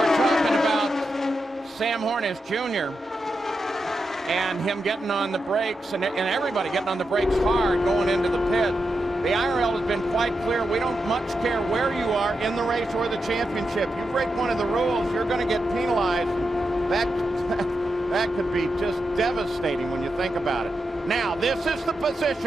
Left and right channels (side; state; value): both; normal; correlation 0.87